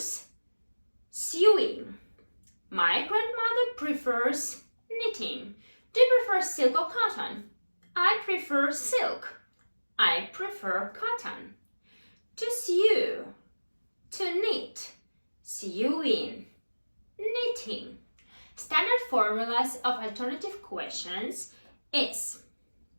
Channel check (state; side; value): inverted; both; correlation -1.00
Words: sewing. My grandmother prefers knitting. Do you prefer silk or cotton? I prefer silk. I prefer cotton. To sew, to knit, sewing, knitting. Standard formulas of alternative questions is